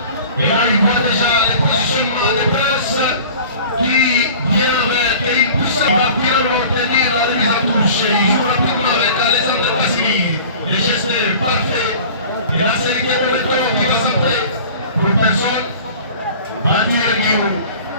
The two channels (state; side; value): inverted; both; correlation -0.43